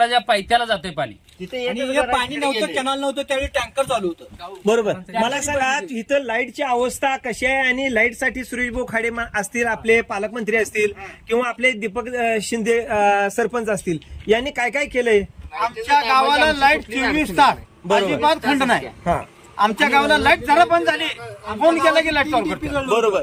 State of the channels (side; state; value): both; identical; correlation 1.00